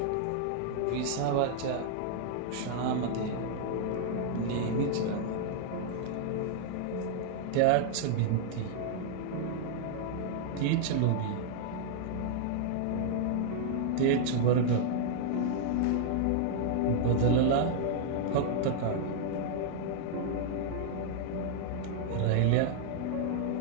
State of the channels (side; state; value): both; different; correlation -0.01